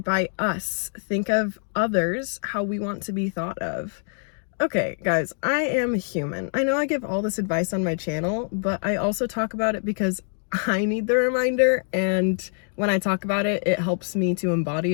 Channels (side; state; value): right; silent; 60 dB below the other